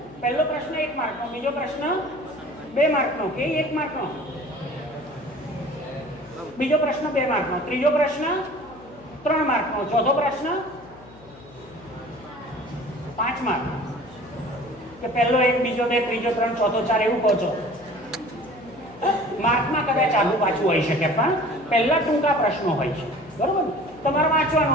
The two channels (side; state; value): left; noise; hum, 22 dB below the sound